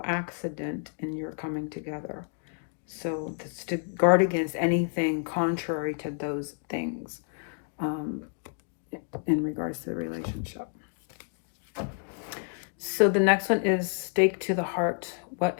accident in your coming together. So it's to guard against anything contrary to those things in regards to the relationship. So the next one is stake to the heart. What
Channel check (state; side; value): silent; right; 58 dB below the other